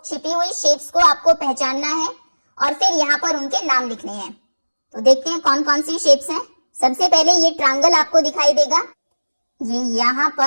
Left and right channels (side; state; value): both; inverted; correlation -1.00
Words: छिपी हुई शेप्स को आपको पहचानना है और फिर यहाँ पर उनके नाम लिखने हैं। तो देखते हैं कौन कौन सी शेप्स हैं। सबसे पहले ये ट्रायंगल आपको दिखाई देगा, ये यहाँ